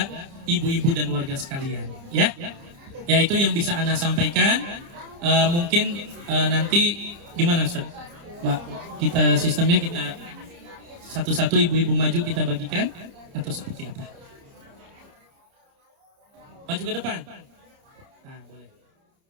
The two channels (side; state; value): left; late; 30 ms